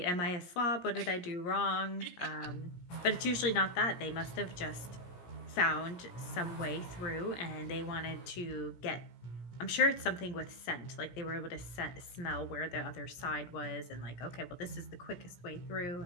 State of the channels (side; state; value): right; late; 17 ms